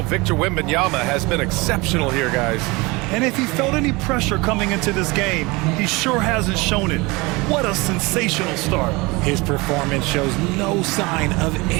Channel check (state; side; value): quieter; left; 24.4 dB